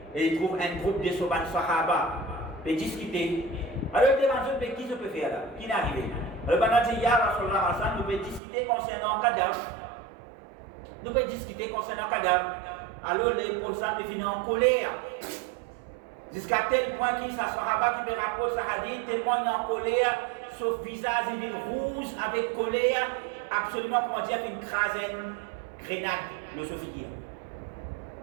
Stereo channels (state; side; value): drops out; left; at 8.4 s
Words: et ils trouvent un groupe de Sahaba pour discuter. Alors, ils demandent qui se peut faire là, qui est arrivé. Alors, pendant que Ya Rasulallah, nous pouvons discuter concernant le cadavre. Nous pouvons discuter concernant le cadavre. Alors, les professeurs me finissent en colère. Jusqu'à tel point qu'il y a un Sahaba qui me rapporte ça hadith, tellement il est en colère, son visage il est rouge avec colère, absolument, comment dire, une grenade, le Sophie.